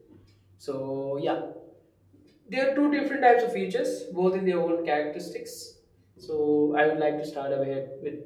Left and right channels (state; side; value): identical; both; correlation 1.00